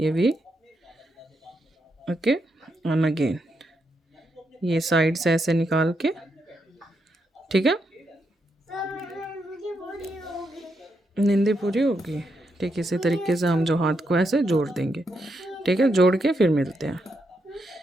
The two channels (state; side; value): normal; both; correlation 0.82